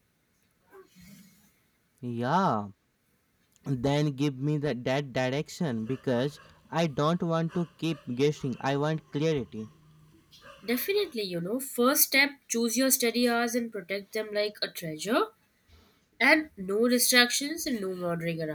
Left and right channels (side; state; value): both; identical; correlation 1.00